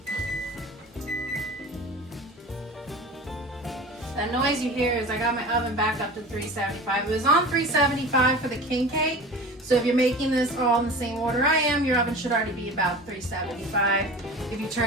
That noise you hear is I got my oven back up to 375. It was on 375 for the king cake. So if you're making this all in the same order I am, your oven should already be about 375. If you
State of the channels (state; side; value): normal; both; correlation 0.36